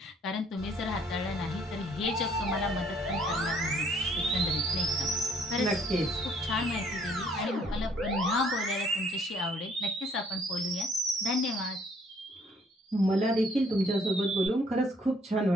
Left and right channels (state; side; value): normal; both; correlation 0.63